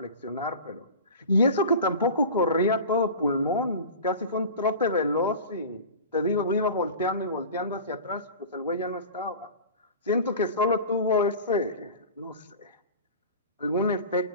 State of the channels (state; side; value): inverted; both; correlation -0.35